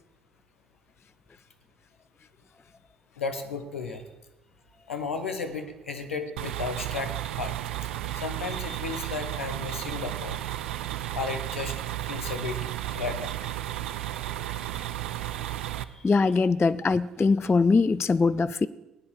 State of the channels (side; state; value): both; normal; correlation 0.66